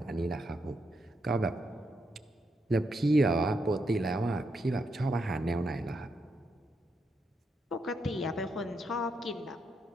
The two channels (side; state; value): both; normal; correlation 0.81